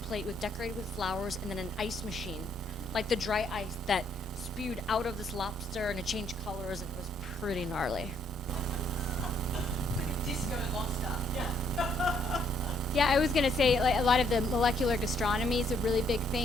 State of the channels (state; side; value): normal; both; correlation 0.68